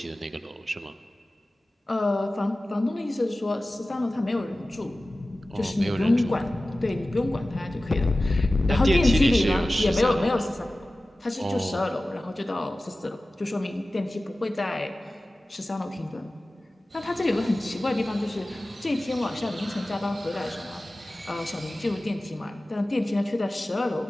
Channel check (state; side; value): normal; both; correlation 0.96